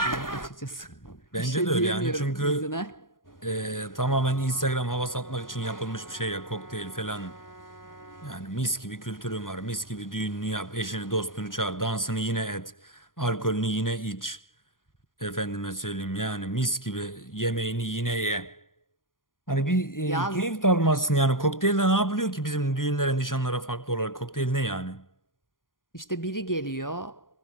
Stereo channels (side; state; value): right; late; 0.90 ms